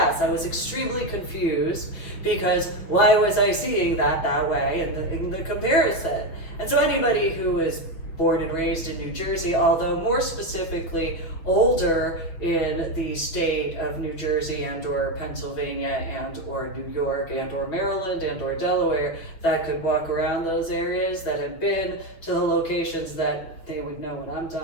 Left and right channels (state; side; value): late; right; 6.2 ms